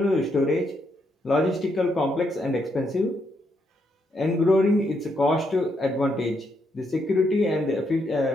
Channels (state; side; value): normal; both; correlation 0.77